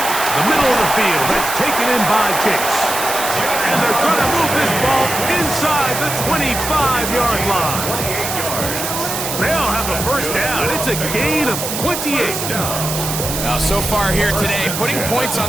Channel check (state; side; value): noise; right; hiss, 4 dB below the sound